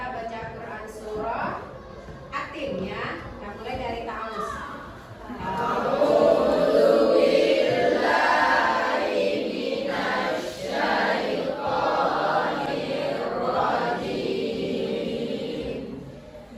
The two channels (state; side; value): identical; both; correlation 1.00